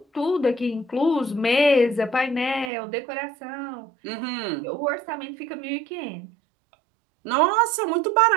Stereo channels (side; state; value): left; drops out; at 2.7 s